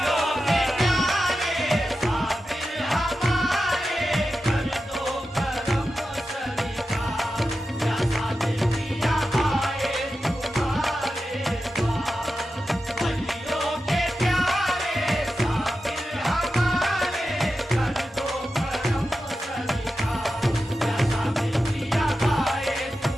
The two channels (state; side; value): normal; both; correlation 0.91